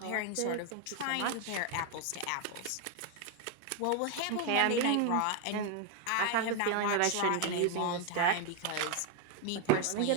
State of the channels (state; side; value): different; both; correlation 0.01